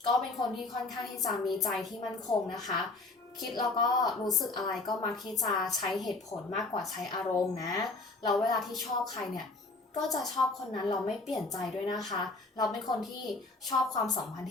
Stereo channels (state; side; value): quieter; right; 3.3 dB